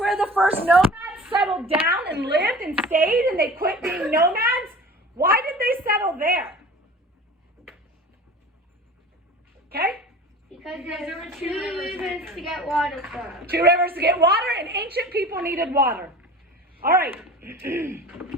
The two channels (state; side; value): normal; both; correlation 0.40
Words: the first nomads settled down and lived and stayed, and they quit being nomads. Why did they settle there? Okay? Because there were 2 rivers to get water from. 2 rivers to get water, and ancient people needed water. All right.